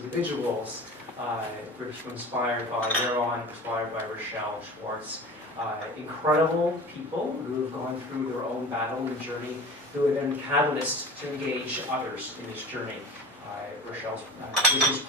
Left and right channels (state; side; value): normal; both; correlation 0.36